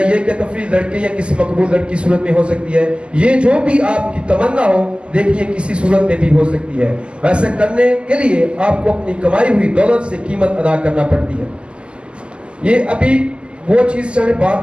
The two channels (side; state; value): left; late; 0.051 ms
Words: कि तफरीह लड़के या किसी मकबूल लड़की की सूरत में हो सकती है। ये जो भी आपकी तमन्ना हो, देखिए किसी सूरत में भी हो सकती है। ऐसा करने के लिए आपको अपनी कमाई हुई दौलत से कीमत अदा करना पड़ती है। ये अभी वो चीज सारे बात